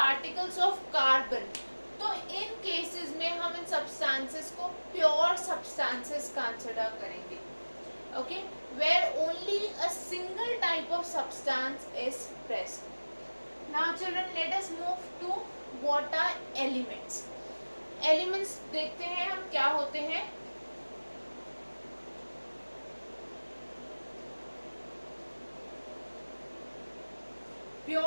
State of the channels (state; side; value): inverted; both; correlation -1.00